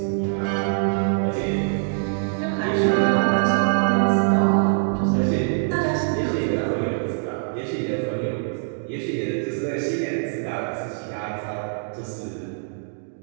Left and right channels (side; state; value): left; silent; digital silence